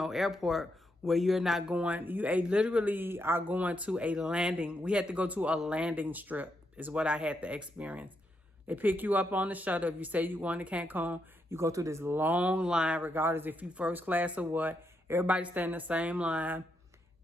airport where you're not going. You literally are going to a landing. We had to go to a landing strip is what I had to experience. They pick you up on the shuttle. If you say you're going to Cancun, you go through this long line, regardless if you first class or what. Everybody stand in the same line.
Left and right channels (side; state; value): both; normal; correlation 0.80